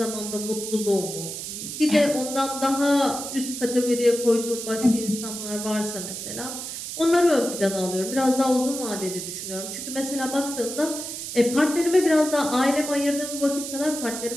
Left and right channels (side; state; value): right; noise; hiss, 7 dB below the sound